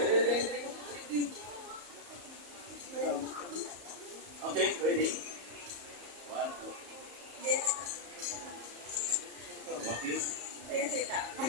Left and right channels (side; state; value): left; late; 34 ms